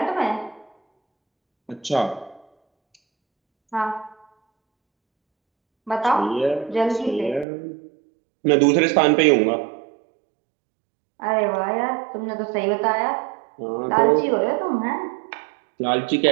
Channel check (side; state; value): left; drops out; at 7.5 s